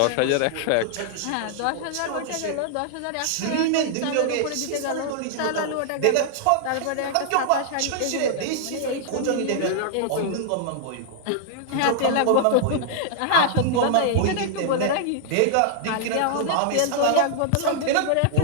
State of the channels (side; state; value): both; different; correlation -0.01